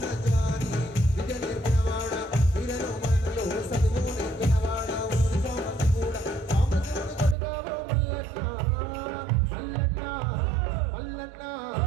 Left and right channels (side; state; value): left; drops out; at 7.4 s